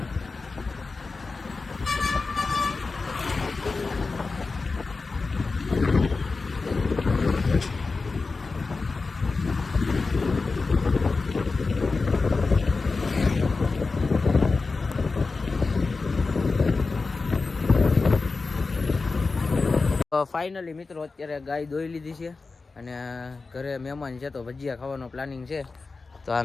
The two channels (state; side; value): quieter; right; 4.0 dB